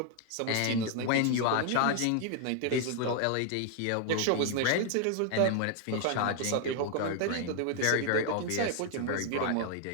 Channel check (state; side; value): different; both; correlation 0.00